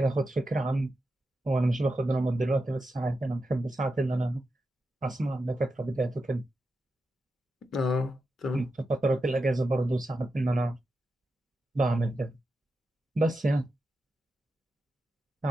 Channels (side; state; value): both; normal; correlation 0.89